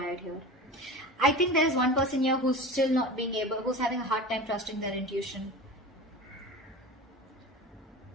here. I think there's one person here who's still not being able, who's having a hard time trusting their intuition.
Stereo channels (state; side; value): normal; both; correlation 0.32